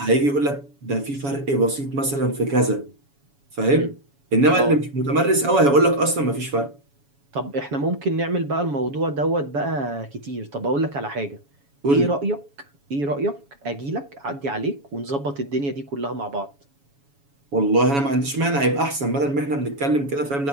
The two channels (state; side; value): late; left; 7.1 ms